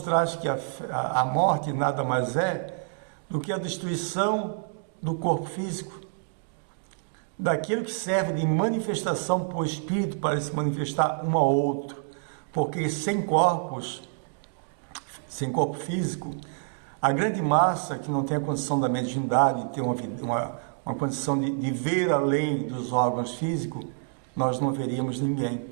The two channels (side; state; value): left; silent; digital silence